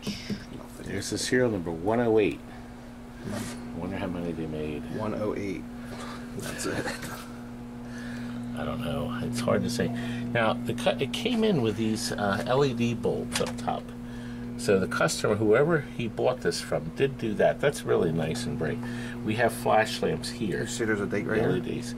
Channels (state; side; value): identical; both; correlation 1.00